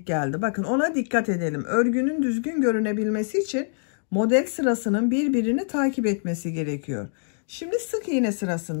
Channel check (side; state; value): right; silent; digital silence